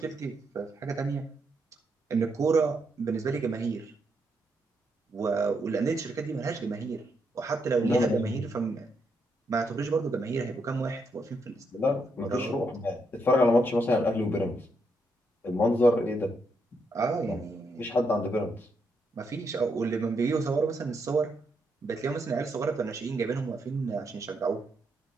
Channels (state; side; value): normal; both; correlation 0.79